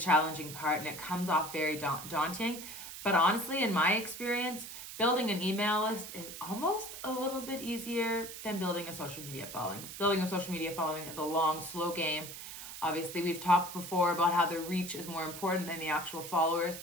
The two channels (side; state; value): right; noise; hiss, 10 dB below the sound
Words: part and it comes off very daunting. But honestly, in my experience, building an email list is almost a little bit easier than building a social media following. Building a social media following is a long, slow game. Obviously, we've talked before about how the reach is more important than the actual followers,